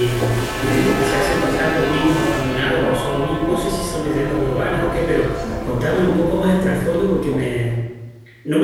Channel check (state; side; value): identical; both; correlation 1.00